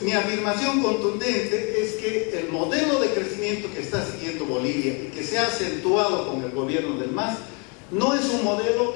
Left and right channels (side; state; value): right; quieter; 33.8 dB